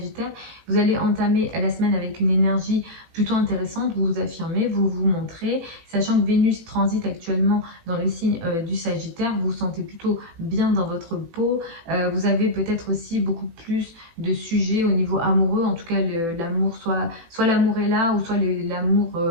vous allez entamer la semaine avec une énergie plutôt intéressante. Vous vous affirmez, vous vous montrez, sachant que Vénus transite actuellement dans le signe du Sagittaire. Vous vous sentez plutôt bien dans votre peau. Vous avez peut-être aussi beaucoup plus de sujets au niveau amoureux. En tout cas, l'amour, soit l'amour est là, ou soit l'amour,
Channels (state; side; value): late; left; 18 ms